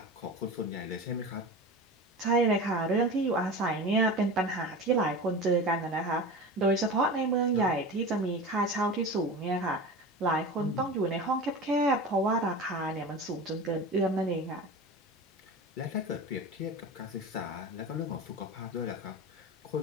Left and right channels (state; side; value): normal; both; correlation 0.30